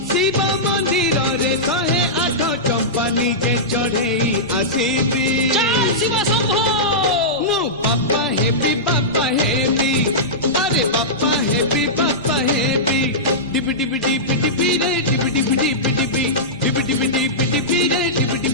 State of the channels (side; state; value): both; normal; correlation -0.14